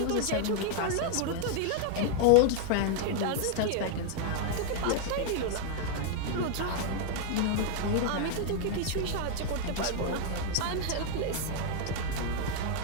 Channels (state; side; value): different; both; correlation 0.00